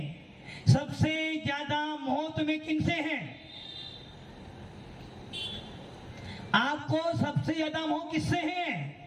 सबसे ज्यादा मोह तुम्हें किनसे है? आपको सबसे ज्यादा मोह किससे है?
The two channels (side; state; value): both; identical; correlation 1.00